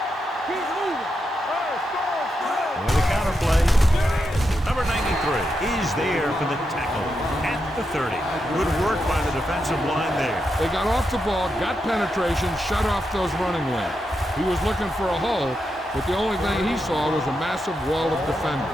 With a counter play. Number 93 is there for the tackle at the 30. Good work by the defensive line there. They got off the ball, got penetration, shut off those running lanes. He was looking for a hole, but the only thing he saw was a massive wall of defenders.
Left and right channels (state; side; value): normal; both; correlation 0.85